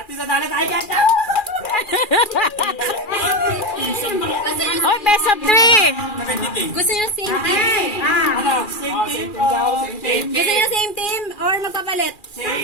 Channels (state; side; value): late; right; 2.4 ms